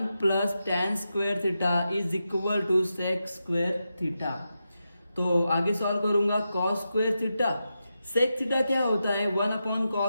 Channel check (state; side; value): inverted; both; correlation -0.88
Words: plus tan square theta is equal to sec square theta. तो आगे सॉल्व करूंगा, cos square theta, sec theta क्या होता है, 1 अपॉन